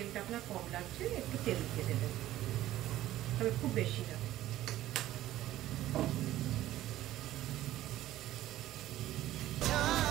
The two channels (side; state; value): left; quieter; 14.3 dB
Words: আপনার কম লাগছে, একটু তেল দিয়ে দেবেন, তবে খুব বেশি না।